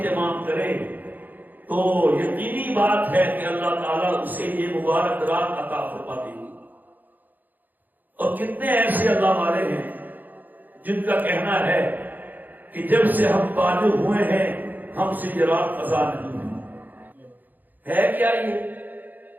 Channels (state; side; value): late; left; 0.085 ms